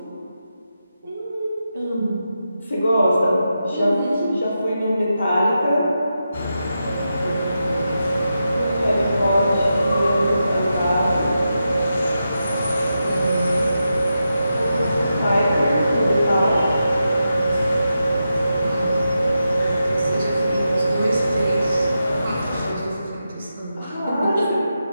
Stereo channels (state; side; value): inverted; both; correlation -0.88